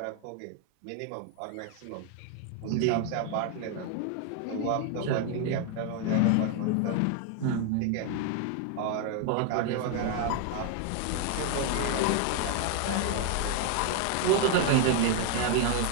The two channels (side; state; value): both; different; correlation 0.01